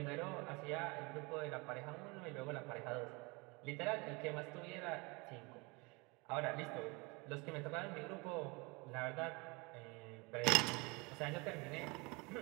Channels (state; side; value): quieter; left; 27.1 dB